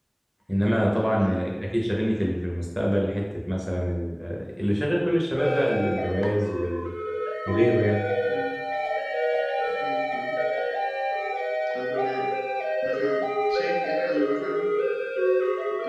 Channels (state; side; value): identical; both; correlation 1.00